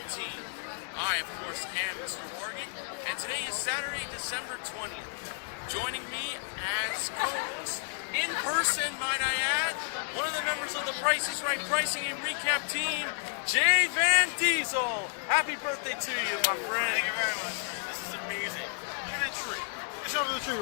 I, of course, am Mr. Morgan, and today is Saturday, December 20th. Joining me as co-host, in person, might I add, one of the members of the Price is Right Pricing and Recap team, jvandiesel. Happy birthday to you, my friend. Thank you very much, man. This is amazing. Look at that tree. Show me the tree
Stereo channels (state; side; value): silent; right; digital silence